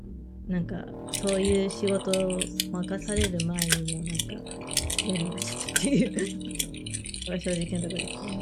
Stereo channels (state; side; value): identical; both; correlation 1.00